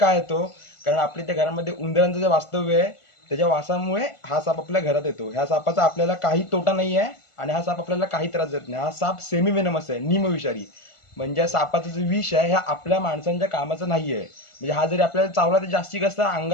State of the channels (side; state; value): right; late; 1.5 ms